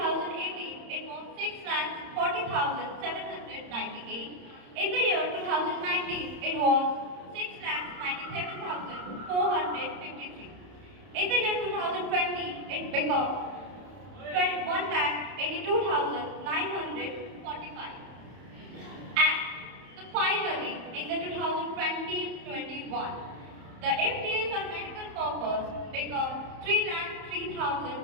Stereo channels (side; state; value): left; late; 31 ms